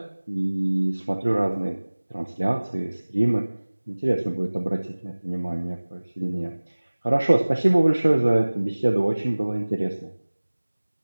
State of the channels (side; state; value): both; inverted; correlation -1.00